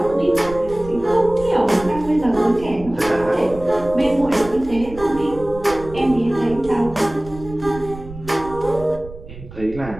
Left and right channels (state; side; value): noise; right; rumble, 15 dB below the sound